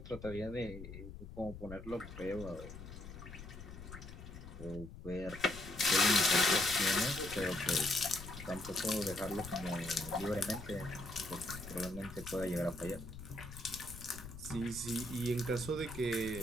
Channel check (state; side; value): noise; left; rumble, 12 dB below the sound